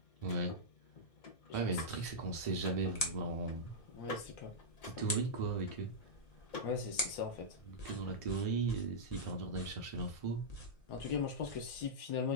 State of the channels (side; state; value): right; late; 1.8 ms